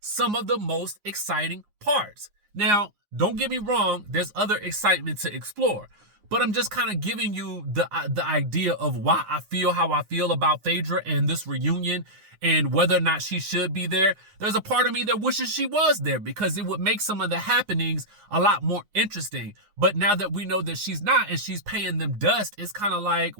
of the most exciting parts. Now, don't get me wrong, there's other excitement to explore, but I'm just kind of giving you the idea of why I feel how I feel about Phaedra and this reunion and whether or not she should be there. There's a part of me that wishes she was there because it would make some of the happenings a lot more interesting. But now that we know that she's not and she's paying them dust, it's kind of like,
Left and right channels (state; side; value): late; left; 9.6 ms